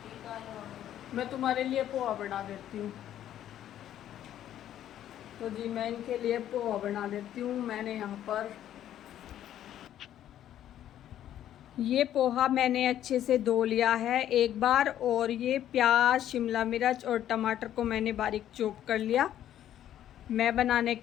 बाल। मैं तुम्हारे लिए पोहा बना देती हूँ। तो जी मैं इनके लिए पोहा बना देती हूँ। मैंने यहाँ पर ये पोहा मैंने अच्छे से धो लिया है एक बार, और ये प्याज, शिमला मिर्च और टमाटर को मैंने बारीक चॉप कर लिया। मैं बनाने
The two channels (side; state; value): right; quieter; 11.4 dB